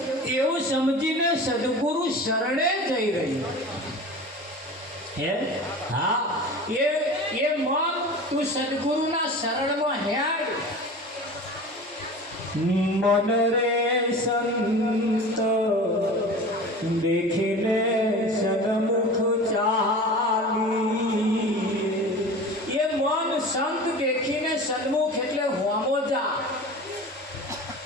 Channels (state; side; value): normal; both; correlation 0.36